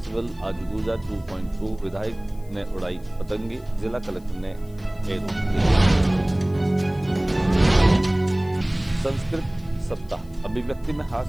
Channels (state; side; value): noise; left; hiss, 29 dB below the sound